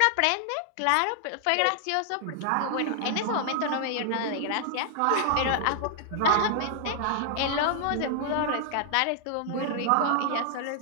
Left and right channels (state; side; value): different; both; correlation 0.00